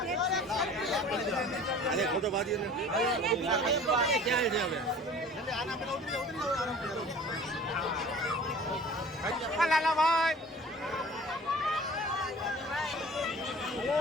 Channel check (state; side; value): normal; both; correlation 0.45